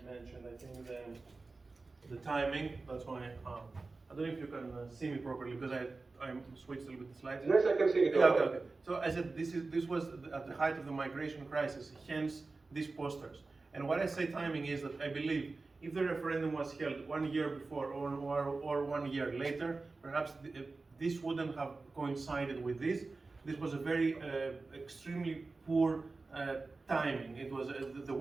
mentioned, I think the timing. That's why I don't know if you can see me properly, because I'm switched a little bit the slides. Yes, I can see it. Yeah, okay. So I said this was at the height of the migration crisis. Hence these posters. And what I say timing is that I believe if the referendum was held 1 year before or 1 year later, perhaps this wouldn't have coincided with this. This was a very extremely poor timing. It was the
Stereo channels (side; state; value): left; quieter; 3.7 dB